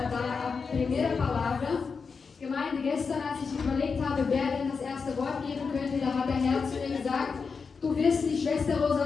dar a primeira palavra. Gemeinde, gestern, als ich überlegt habe, wer denn das erste Wort geben könnte, da hat der Herr zu mir gesagt, du wirst die Schwester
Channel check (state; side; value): quieter; right; 5.2 dB